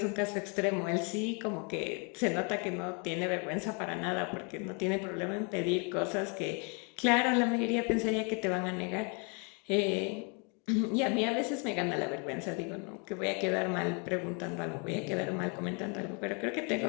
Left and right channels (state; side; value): quieter; right; 34.8 dB